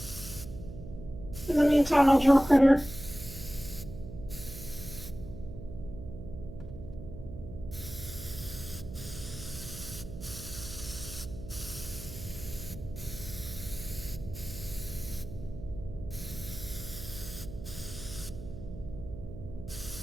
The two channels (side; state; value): right; noise; hum, 11 dB below the sound